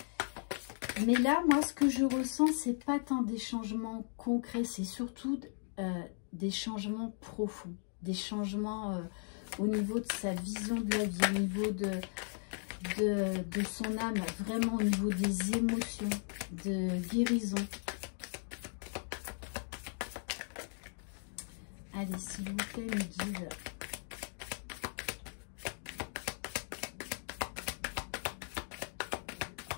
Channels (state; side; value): silent; right; 53 dB below the other